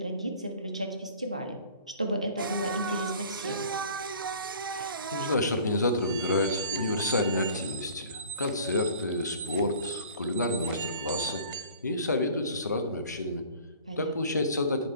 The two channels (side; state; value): both; inverted; correlation -0.48